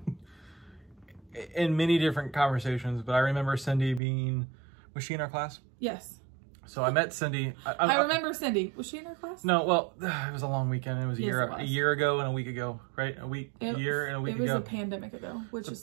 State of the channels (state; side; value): drops out; left; at 4.0 s